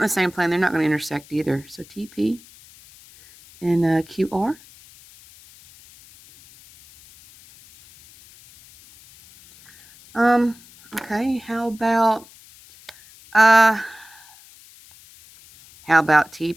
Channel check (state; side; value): noise; left; hiss, 24 dB below the sound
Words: the same plane. They're not going to intersect either. So TP and QR. Okay, how about